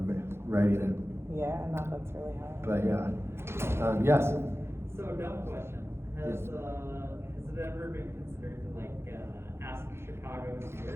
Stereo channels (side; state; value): left; late; 0.12 ms